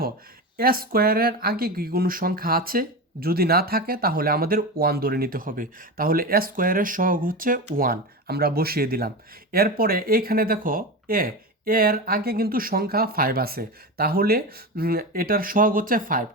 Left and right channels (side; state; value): both; normal; correlation 0.22